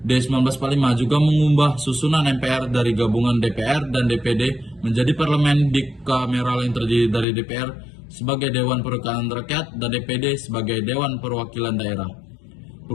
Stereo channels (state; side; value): drops out; right; at 7.2 s